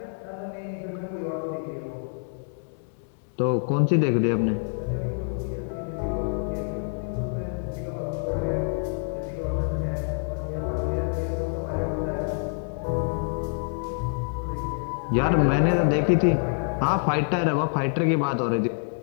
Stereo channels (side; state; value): right; silent; digital silence